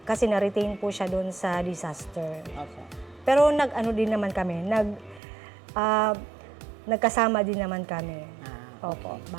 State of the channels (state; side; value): drops out; left; at 5.2 s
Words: kasi na-retain po siya dun sa disaster. Okay. Pero din naman kami, nagkasama din naman kami. Opo,